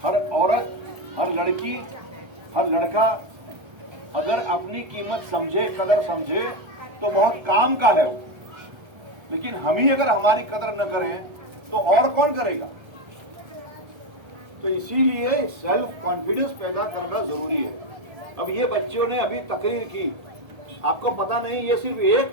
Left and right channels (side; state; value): left; late; 1.3 ms